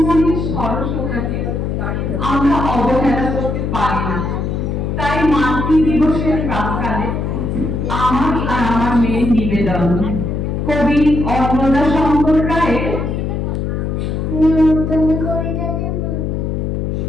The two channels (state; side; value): noise; left; hum, 2 dB below the sound